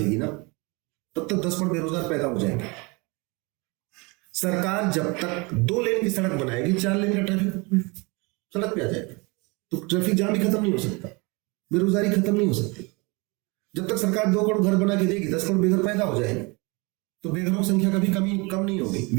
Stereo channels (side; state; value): left; quieter; 27.8 dB